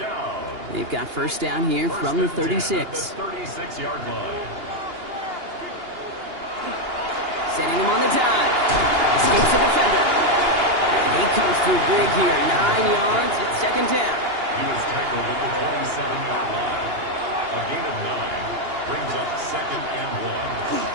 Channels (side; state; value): left; late; 2.8 ms